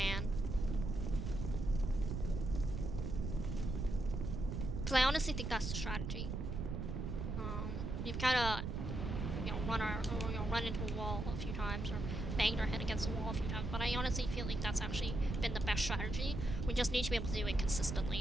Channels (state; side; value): noise; right; rumble, 3 dB below the sound